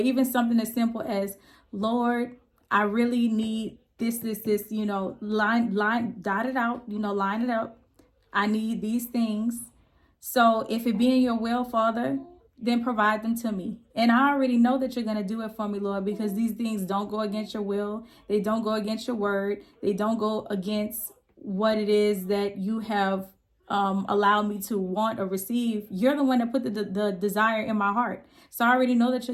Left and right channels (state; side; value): identical; both; correlation 1.00